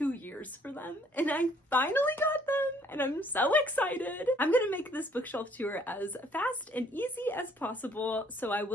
years for them and I finally got them and I'm so excited. I'm gonna make this bookshelf tour as fast and easy as possible, so I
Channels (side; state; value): both; normal; correlation 0.62